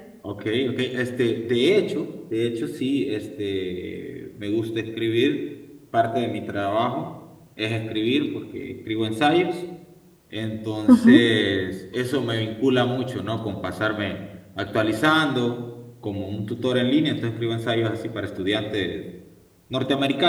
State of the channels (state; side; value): identical; both; correlation 1.00